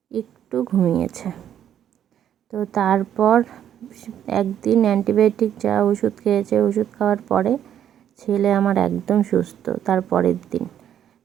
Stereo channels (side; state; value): left; quieter; 10.1 dB